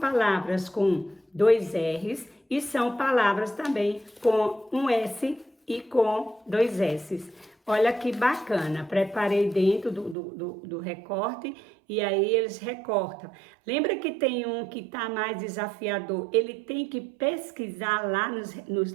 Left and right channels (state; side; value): drops out; left; at 10.2 s